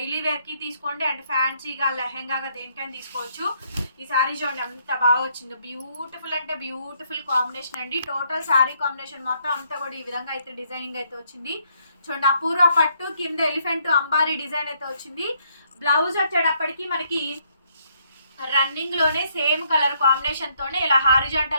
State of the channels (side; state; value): both; inverted; correlation -0.71